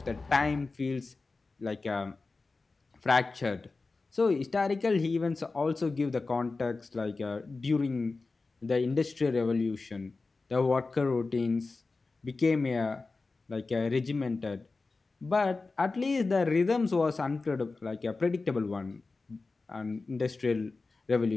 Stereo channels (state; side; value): quieter; right; 3.8 dB